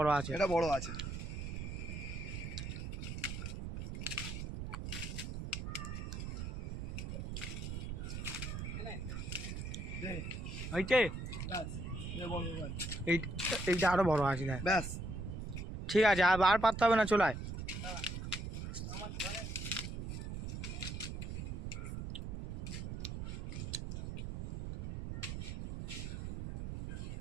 আছে, এটা বড় আছে। এইটা আরো বড় আছে। ব্যাস ঠিক আছে, আর পারতে হবে না, চলায়।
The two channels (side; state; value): right; noise; rumble, 5 dB below the sound